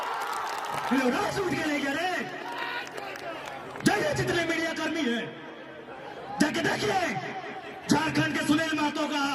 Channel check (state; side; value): identical; both; correlation 1.00